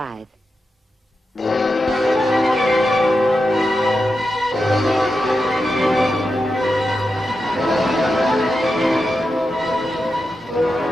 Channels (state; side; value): normal; both; correlation 0.89